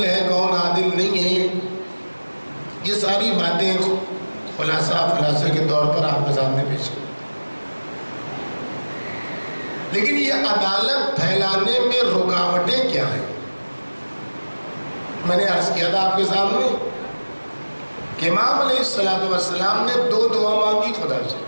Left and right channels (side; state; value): both; inverted; correlation -1.00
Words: ہے کون عادل نہیں ہے، یہ ساری باتیں خلاصے کے طور پر آپ کے سامنے پیش کی. لیکن یہ عدالت پھیلانے میں رکاوٹیں کیا ہیں؟ میں نے عرض کیا تھا آپ کے سامنے کہ امام علیہ السلام نے دو دعا مانگی خدا سے،